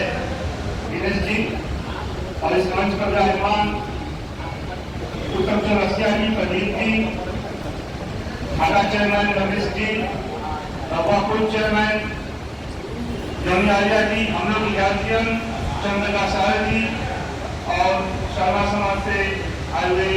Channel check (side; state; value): both; identical; correlation 1.00